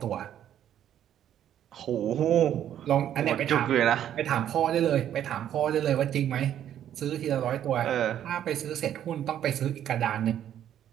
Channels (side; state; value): left; quieter; 10.6 dB